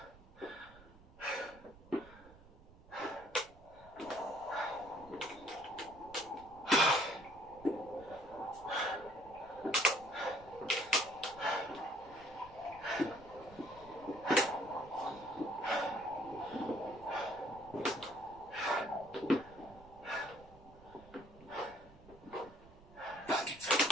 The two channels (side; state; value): right; noise; rumble, 22 dB below the sound